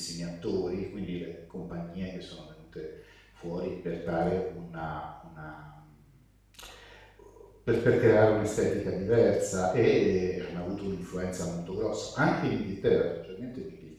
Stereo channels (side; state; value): both; identical; correlation 1.00